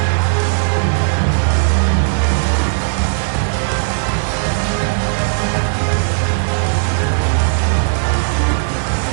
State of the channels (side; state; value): left; silent; 62 dB below the other